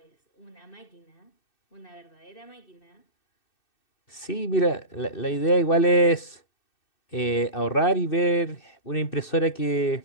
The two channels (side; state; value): right; late; 2.6 ms